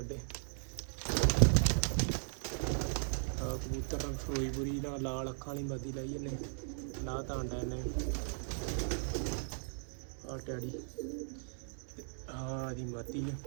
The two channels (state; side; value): silent; left; 53 dB below the other